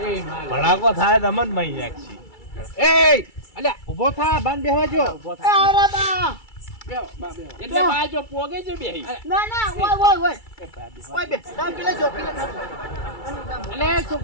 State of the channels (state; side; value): late; right; 2.3 ms